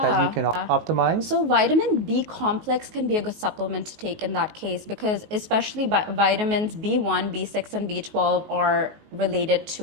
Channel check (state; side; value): late; left; 19 ms